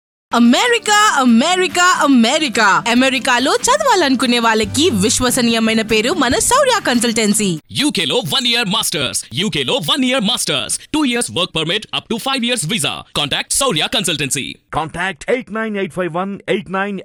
అమెరికా అమెరికా అమెరికా అమెరికాలో చదవాలనుకునే వాళ్ళకి విశ్వసనీయమైన పేరు మన శౌర్య కన్సల్టెన్సీ. UK లో 1 year masters, UK లో 1 year masters, 2 years work permit up to 5 years visa. Contact Saurya Consultancy. Contact 89851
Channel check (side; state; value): both; identical; correlation 1.00